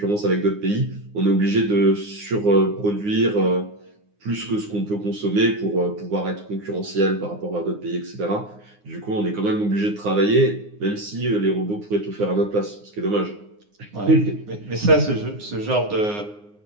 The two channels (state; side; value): late; left; 9.7 ms